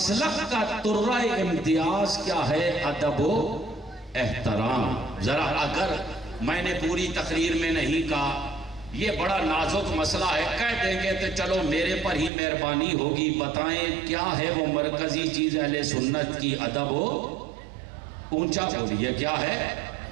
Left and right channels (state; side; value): drops out; left; at 12.3 s